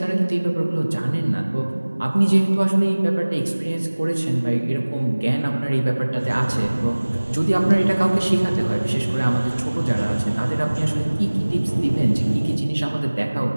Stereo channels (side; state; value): both; inverted; correlation -1.00